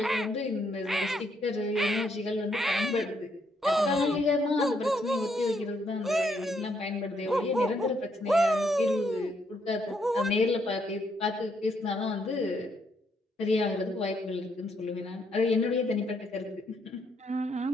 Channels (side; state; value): both; normal; correlation 0.74